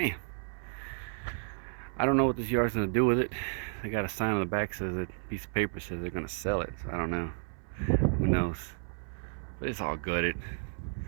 I don't know what this yard's gonna do with it. They got a sign on the back that says a piece of paper says they're gonna sell it. So I don't know. Who knows? But it's all gutted.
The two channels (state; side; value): silent; left; 56 dB below the other